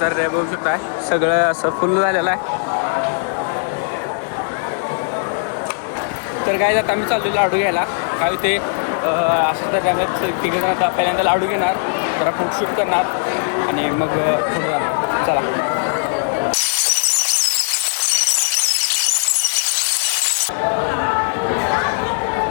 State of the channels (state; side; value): silent; right; 67 dB below the other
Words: बघू शकता सगळं असं फुल झालेलं आहे. तर काय आता आम्ही चाललो लाडू घ्यायला. काय होते असं तर तिघजण आता पहिल्यांदा लाडू घेणार परत फूड शूट करणार आणि मग फूड जाणार. चला